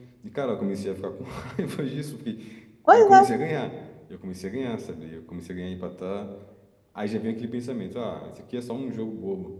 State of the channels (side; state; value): both; identical; correlation 1.00